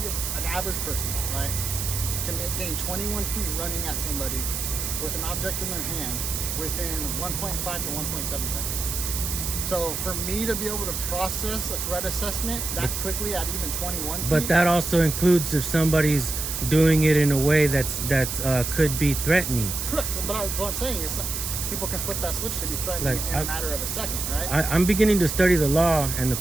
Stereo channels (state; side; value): noise; right; hiss, 3 dB below the sound